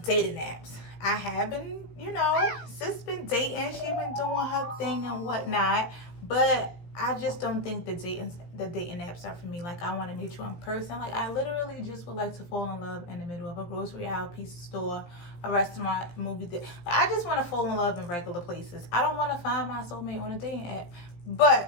dating apps. I have been, sis been dating. She been doing her thing and whatnot, but I just don't think the dating apps are for me. Like, I want to meet you in person. Like, I literally just would like to fall in love in the middle of a grocery aisle, pizza store, a restaurant, movie theater. I just want to fall in love in regular places. I don't want to find my soulmate on a dating app.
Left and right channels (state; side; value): late; right; 17 ms